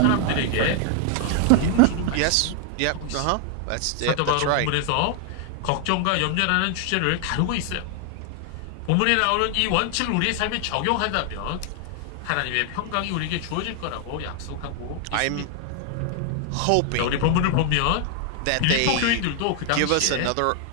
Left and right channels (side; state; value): both; different; correlation 0.00